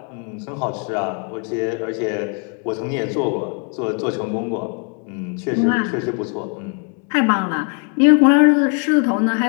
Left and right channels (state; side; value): quieter; right; 39.7 dB